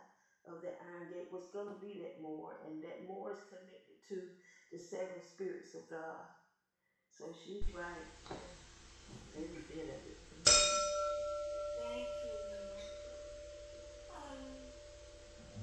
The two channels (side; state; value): both; identical; correlation 1.00